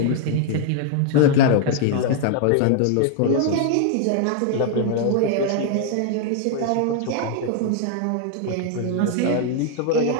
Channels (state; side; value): different; both; correlation 0.00